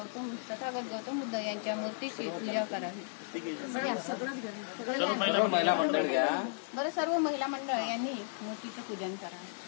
तथागत गौतम बुद्ध यांच्या मूर्तीची पूजा करावी। बरं, सर्व महिला मंडळ यांनी मूर्तीचं पूजन करावं।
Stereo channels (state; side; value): silent; right; digital silence